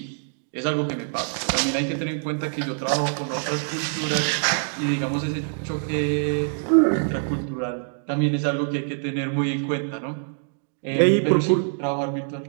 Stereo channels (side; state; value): left; silent; digital silence